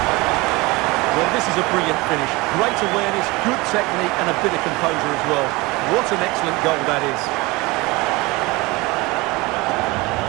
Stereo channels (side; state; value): left; quieter; 23.2 dB